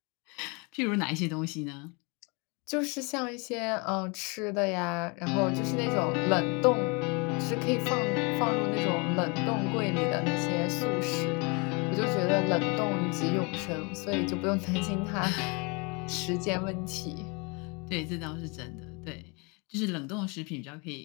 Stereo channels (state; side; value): quieter; right; 30.7 dB